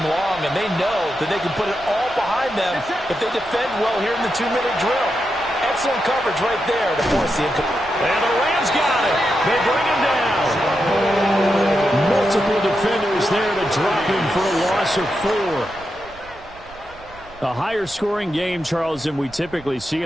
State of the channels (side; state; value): right; noise; rumble, 22 dB below the sound